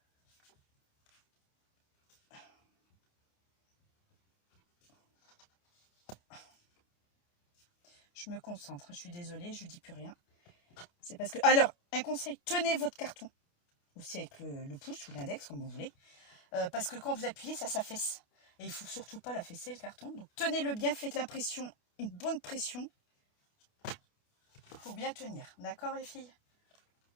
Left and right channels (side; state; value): right; late; 28 ms